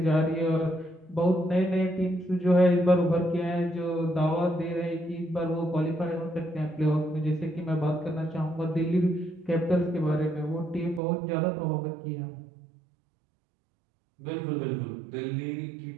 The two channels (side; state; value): left; drops out; at 11.0 s